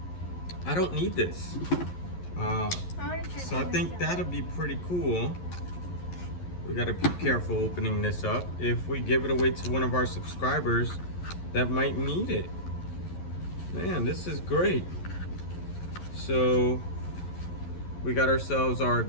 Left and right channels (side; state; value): right; late; 11 ms